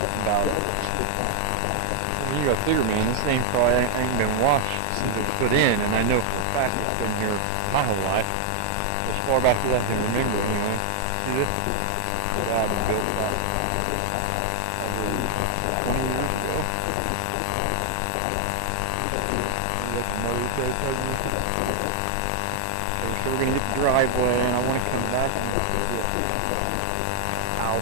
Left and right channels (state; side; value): different; both; correlation 0.00